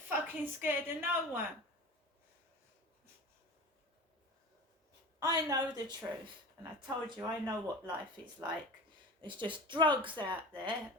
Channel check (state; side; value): normal; both; correlation 0.34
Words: scared of no one. I know the truth, and I told you I know what life is like. There's just drugs out there,